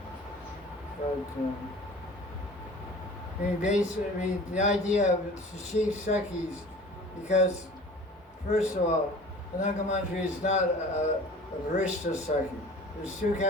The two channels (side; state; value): both; normal; correlation 0.44